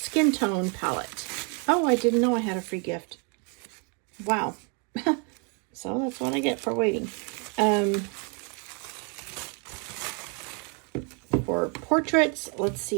tone palette. Oh, I didn't know I had a free gift. Wow. So that's what I get for waiting. For portraits, let's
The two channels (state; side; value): quieter; left; 36.0 dB